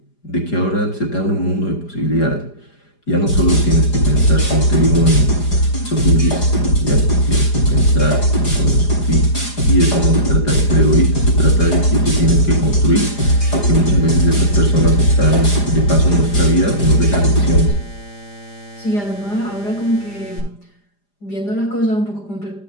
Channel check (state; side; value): late; right; 4.9 ms